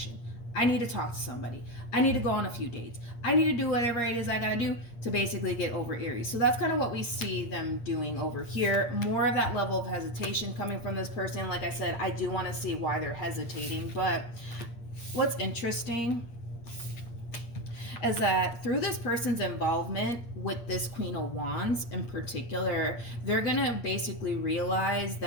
I need to talk to somebody. I need to go on a few dates. I need to do whatever it is I gotta do to basically get over Aries. So that's kind of what we see them doing over here. More of that level of hesitation coming from this person. Like I said, I do want to see why they're hesitating. But what's interesting is that through this person's involvement with this Queen of Wands in particular, they're gonna basically realize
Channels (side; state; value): right; late; 8.5 ms